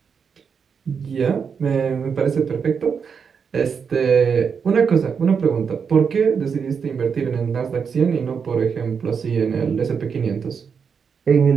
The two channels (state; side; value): quieter; left; 6.3 dB